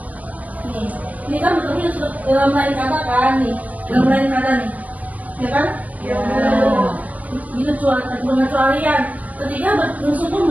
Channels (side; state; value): left; late; 0.074 ms